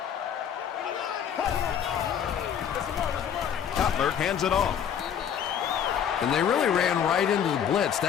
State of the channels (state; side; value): quieter; right; 8.6 dB